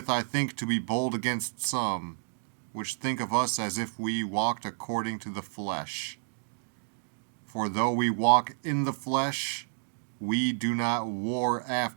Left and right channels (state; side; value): silent; left; digital silence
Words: I think to be bold against some, which think of us as if we walked according to the flesh. For though we walk in the flesh, we do not war